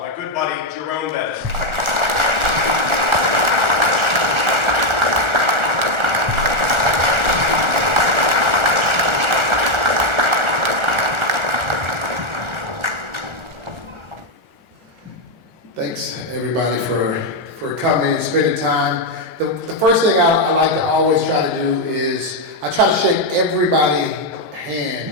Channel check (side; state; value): left; late; 1.4 ms